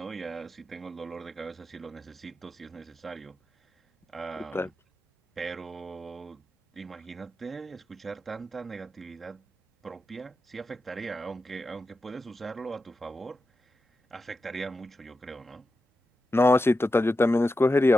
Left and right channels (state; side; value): normal; both; correlation 0.90